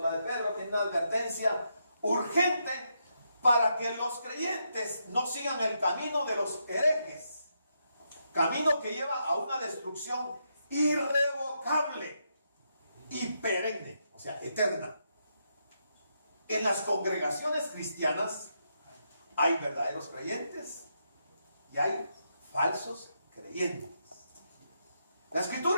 de Pedro tiene una advertencia urgente para que los creyentes no sigan el camino de los herejes, camino que lleva a una destrucción irrevocable y perenne, o sea, eterna. En las congregaciones cristianas hay verdaderos creyentes y hay falsos creyentes. La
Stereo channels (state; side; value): inverted; both; correlation -0.81